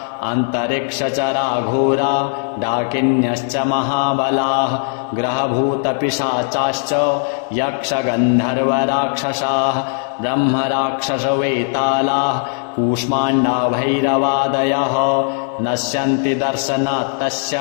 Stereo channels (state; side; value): silent; right; 64 dB below the other